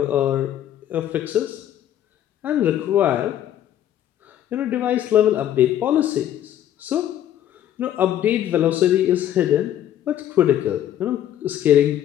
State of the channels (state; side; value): quieter; right; 11.3 dB